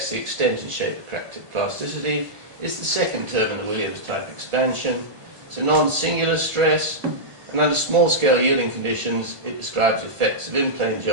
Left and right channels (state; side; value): late; left; 1.5 ms